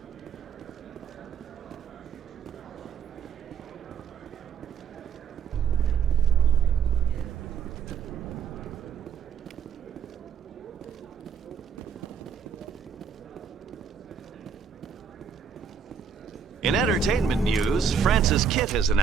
In entertainment news, Francis Kitt has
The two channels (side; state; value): left; quieter; 6.7 dB